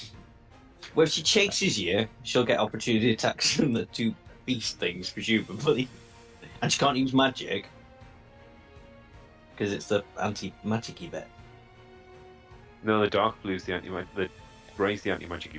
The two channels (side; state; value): both; identical; correlation 1.00